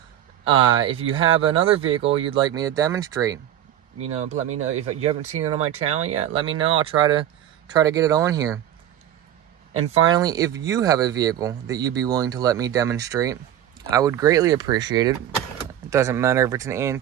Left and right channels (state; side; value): quieter; left; 11.1 dB